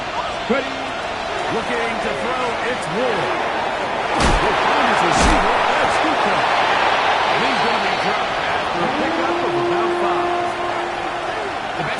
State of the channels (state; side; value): identical; both; correlation 1.00